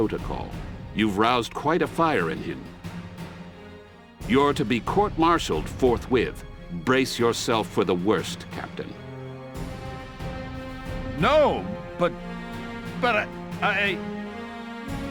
You've roused quite a fire in him. You're to be court-martialed forthwith. Brace yourself for the worst, Captain. No, but I...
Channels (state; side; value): identical; both; correlation 1.00